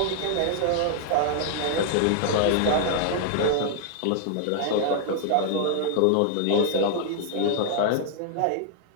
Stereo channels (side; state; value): both; different; correlation -0.01